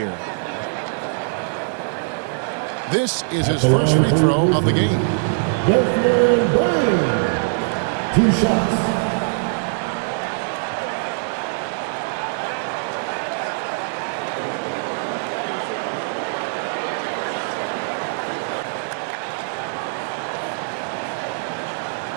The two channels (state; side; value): silent; left; 63 dB below the other